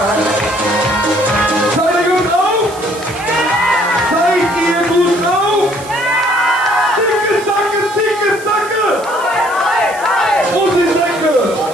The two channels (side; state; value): right; noise; hiss, 18 dB below the sound